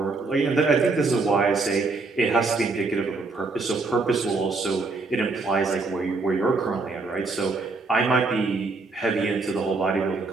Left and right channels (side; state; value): left; quieter; 3.7 dB